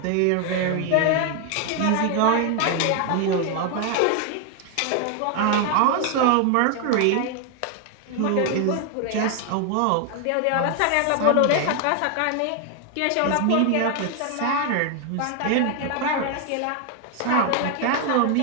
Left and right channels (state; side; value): different; both; correlation 0.01